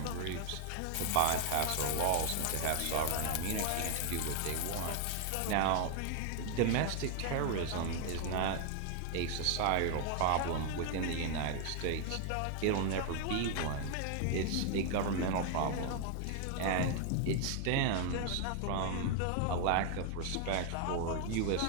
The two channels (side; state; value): both; different; correlation 0.00